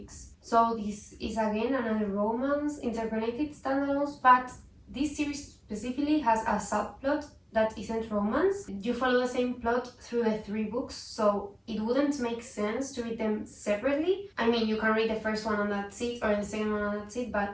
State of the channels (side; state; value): both; identical; correlation 1.00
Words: So this is again another romance, interconnected standalones, but this series specifically has a subplot that isn't romance. You follow the same plot through the 3 books, so it wouldn't make sense to read them separately. I mean, you can read the first one and that's it, or the second one and that's it,